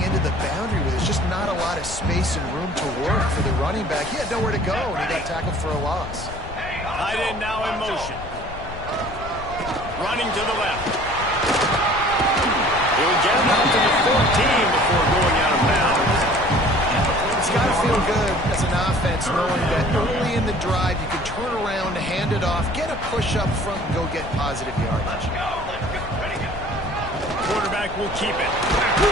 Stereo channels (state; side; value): noise; left; rumble, 12 dB below the sound